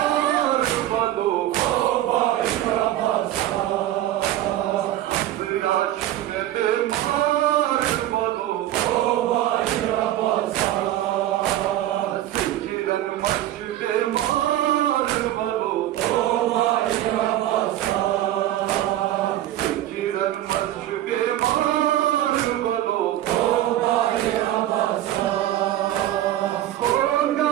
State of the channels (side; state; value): left; quieter; 13.6 dB